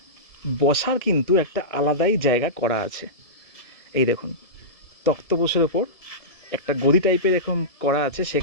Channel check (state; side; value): late; right; 1.6 ms